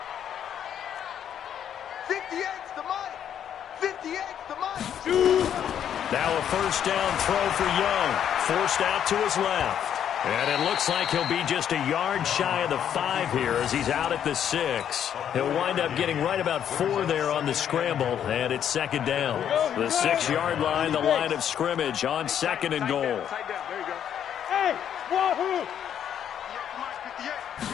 58's the money. 58's the money. Now a first down throw for Young. Forced out to his left. And it looks like he'll be just a yard shy of the 5 here as he's out at the 6. He'll wind up getting right about 4 there on the scramble, and it's second down. The 6-yard line, the line of scrimmage on second and goal. Tight down. There you go. Hey, wahoo!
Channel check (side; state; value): right; quieter; 9.4 dB